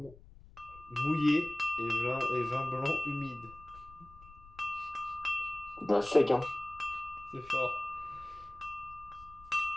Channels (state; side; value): noise; left; rumble, 21 dB below the sound